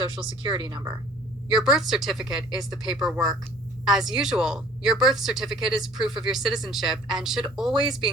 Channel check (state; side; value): normal; both; correlation 0.51